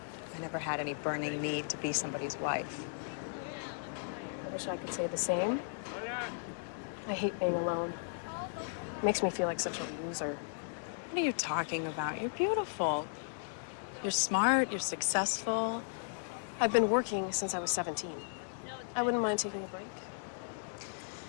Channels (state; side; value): silent; right; digital silence